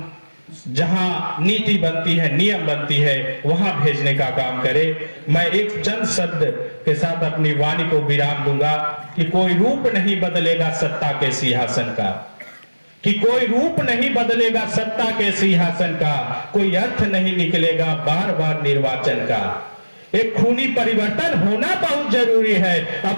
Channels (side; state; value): both; inverted; correlation -1.00